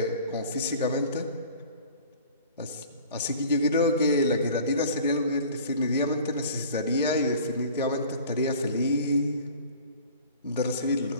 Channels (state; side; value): inverted; both; correlation -0.46